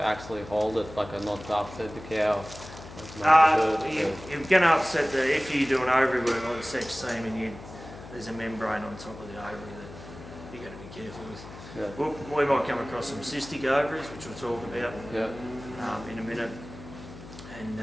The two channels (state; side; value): noise; left; hum, 15 dB below the sound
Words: hold it, like not to upset the cow? You're going to upset if you do an ovary work like sex semen, there's a membrane on top of the ovary that you've got to be careful with. Yeah. We might come across some cystic ovaries, which we'll talk about in a minute, and